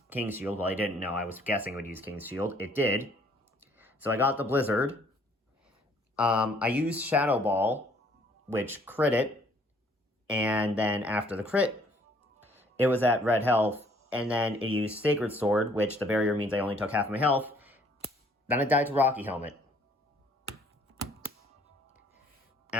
King's Shield. Well, I didn't know. I was guessing it would use King's Shield. It did. So I got the Blizzard. I used Shadow Ball, which crit it. And then after the crit, it was at red health, and then it used Sacred Sword, which the barrier means I only took half my health. Then it died to Rocky Helmet.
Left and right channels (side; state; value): both; normal; correlation 0.61